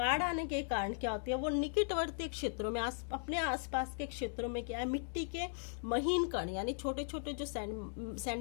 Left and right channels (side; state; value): right; silent; digital silence